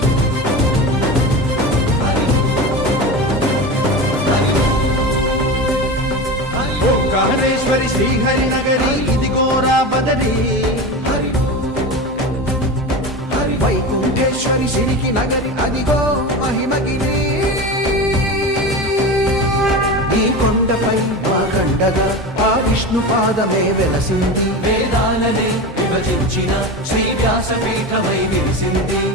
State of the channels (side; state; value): both; normal; correlation 0.26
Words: वो ओंकारेश्वरी श्रीहरि नगरी इदिगोरा बदरी वैकुंठेश्वरी सिरिकी नगरी अदिगो महिमगिरी ఈ కొండపై వాగండగా ఆ విష్ణు పాదమే వెలసింది వేదాలనే విభజించిన శ్రీ వ్యాసపీఠమై విరిసింది